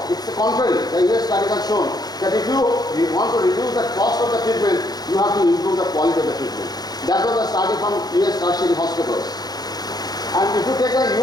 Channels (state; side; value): late; right; 0.19 ms